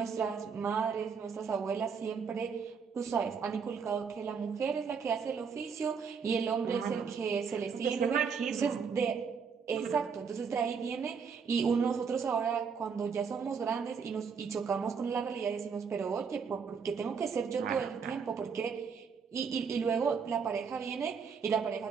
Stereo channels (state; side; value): quieter; left; 6.0 dB